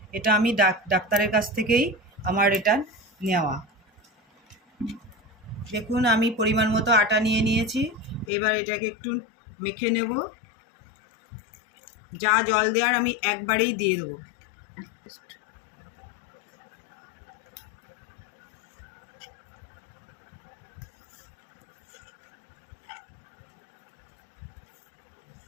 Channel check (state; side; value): drops out; right; at 8.3 s